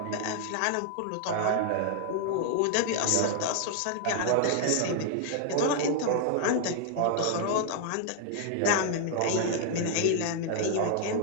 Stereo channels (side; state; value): both; different; correlation 0.00